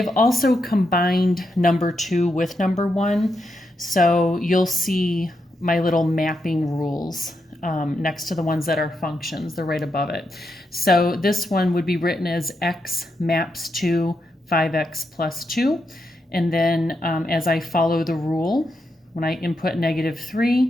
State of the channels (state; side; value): normal; both; correlation 0.83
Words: also combined number 2 with number 1. So you'll see my little mapping rules next to the ones that are functions. They're right above it. So this one would be written as x maps to 5x plus 2. And then as I follow the rule, when I input